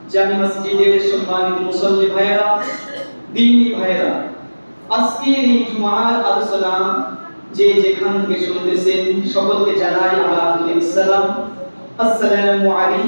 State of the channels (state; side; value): inverted; both; correlation -1.00